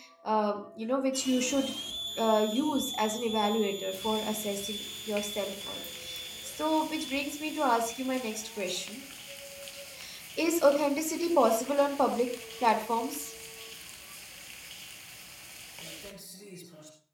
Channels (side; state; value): both; identical; correlation 1.00